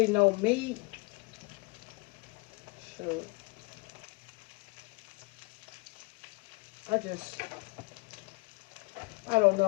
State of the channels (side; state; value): right; quieter; 27.9 dB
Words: no meat. Sure. I don't